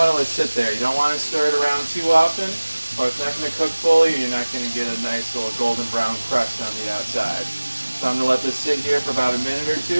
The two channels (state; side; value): inverted; both; correlation -1.00